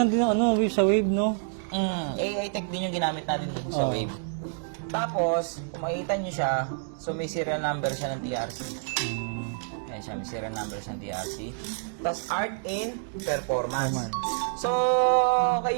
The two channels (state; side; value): silent; left; digital silence